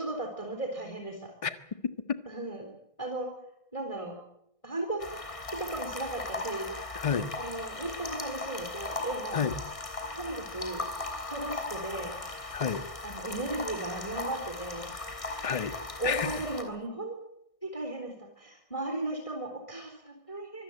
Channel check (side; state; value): right; late; 1.6 ms